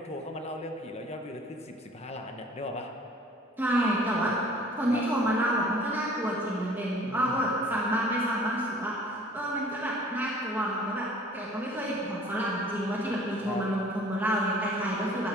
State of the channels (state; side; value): normal; both; correlation 0.51